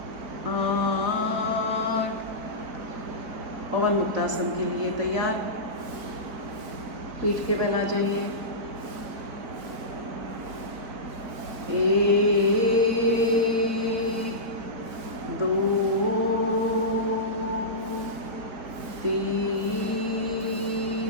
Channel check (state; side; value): late; left; 4.2 ms